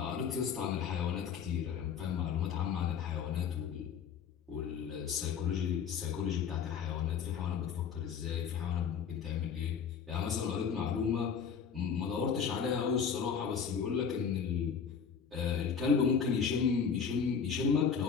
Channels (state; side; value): quieter; right; 6.8 dB